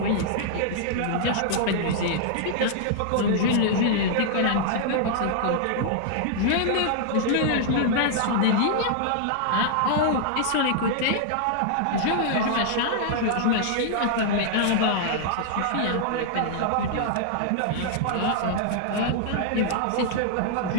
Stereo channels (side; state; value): both; different; correlation -0.01